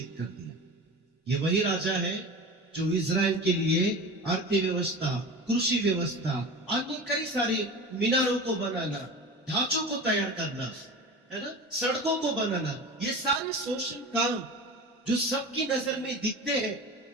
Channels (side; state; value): both; normal; correlation 0.32